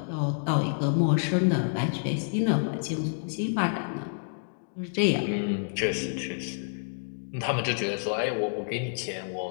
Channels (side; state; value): right; silent; digital silence